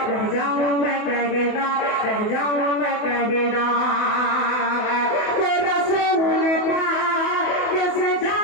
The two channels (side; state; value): right; late; 28 ms